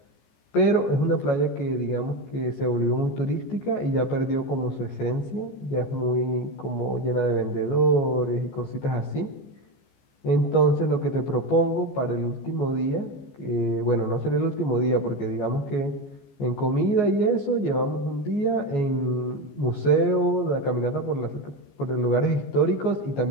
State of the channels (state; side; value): late; right; 14 ms